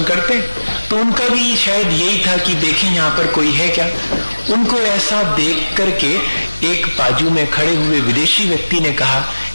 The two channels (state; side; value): inverted; both; correlation -1.00